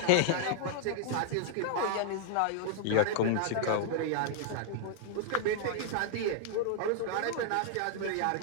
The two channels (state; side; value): different; both; correlation -0.01